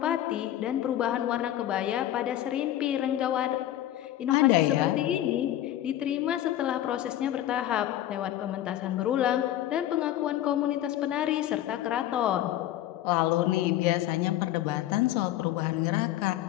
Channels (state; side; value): quieter; right; 13.0 dB